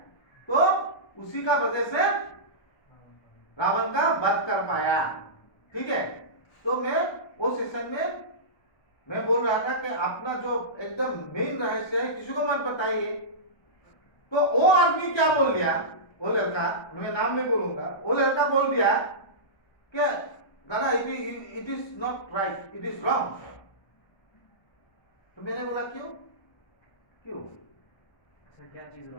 तो उसी का वजह से रावण का वध कर पाया। ठीक है, तो मैं वो सेशन में मैं बोल रहा था कि अपना जो एकदम मेन रहस्य है किसी को मत बताइए। तो वो आदमी क्या बोल दिया, वो लड़का, मैं नाम नहीं बोलूंगा, वो लड़का बोल दिया कि दादा it is not right, it is wrong. तो मैंने बोला क्यों क्यों? सर क्या चीज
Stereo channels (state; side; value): late; right; 1.2 ms